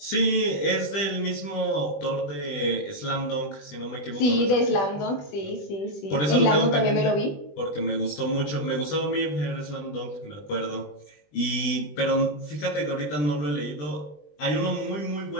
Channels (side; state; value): right; late; 20 ms